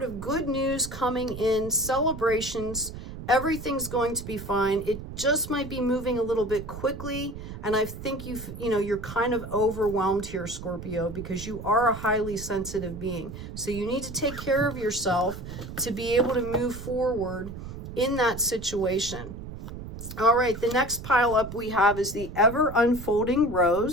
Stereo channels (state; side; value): noise; right; rumble, 10 dB below the sound